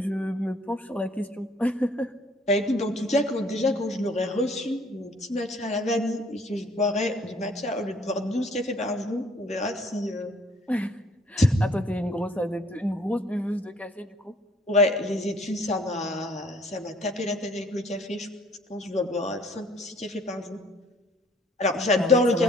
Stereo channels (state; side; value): normal; both; correlation 0.59